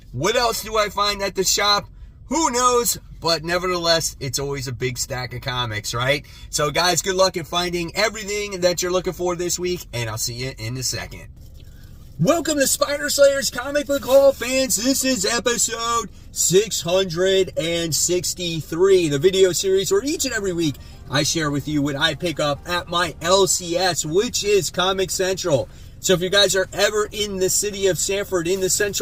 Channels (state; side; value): identical; both; correlation 1.00